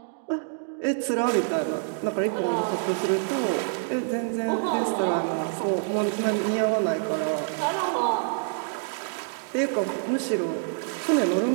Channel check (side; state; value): left; silent; digital silence